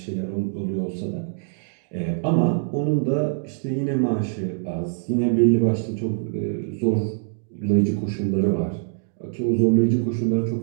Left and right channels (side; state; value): left; silent; 63 dB below the other